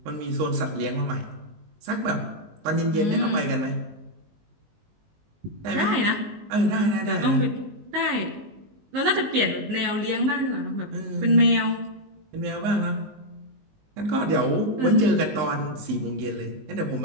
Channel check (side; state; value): left; late; 19 ms